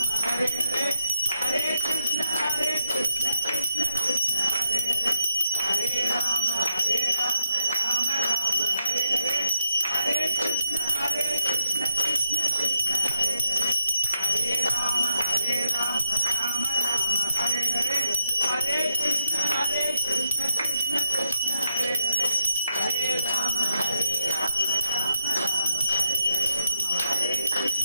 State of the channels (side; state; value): both; inverted; correlation -0.85